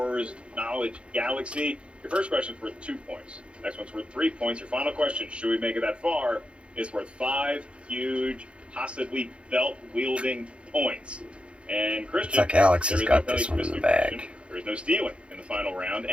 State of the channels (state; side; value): late; left; 0.059 ms